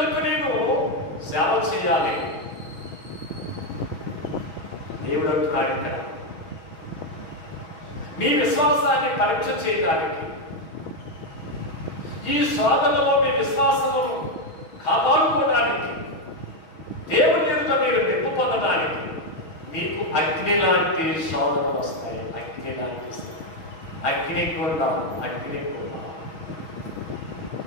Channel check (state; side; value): late; right; 6.2 ms